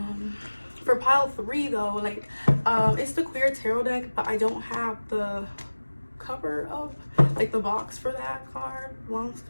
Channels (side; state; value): both; inverted; correlation -1.00